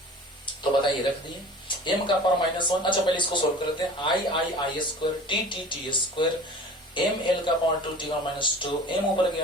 तो बताइए रख दिए m का पावर माइनस 1। अच्छा पहले इसको सोल्व करते हैं। I square t square m l का पावर 2 t का माइनस 2, m ऊपर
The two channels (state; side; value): normal; both; correlation 0.42